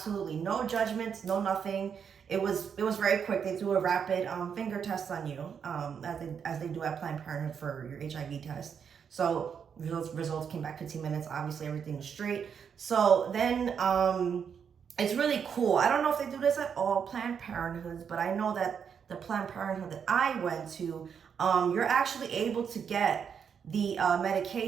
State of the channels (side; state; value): left; quieter; 7.2 dB